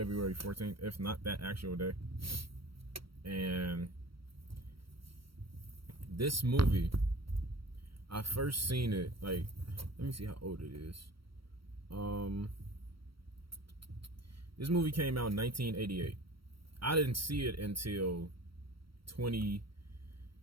14th, if not that actual day. And this movie, I first seen it, like, let me see how old it is. This movie came out in 1988. I didn't see it until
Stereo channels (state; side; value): late; left; 0.75 ms